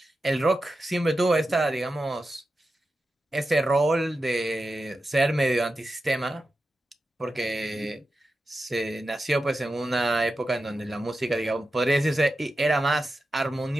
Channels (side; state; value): both; normal; correlation 0.91